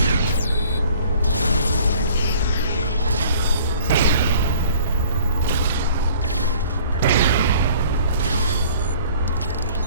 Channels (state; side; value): inverted; both; correlation -0.52